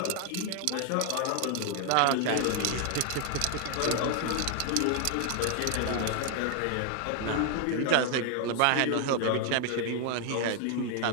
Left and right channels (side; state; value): both; different; correlation 0.00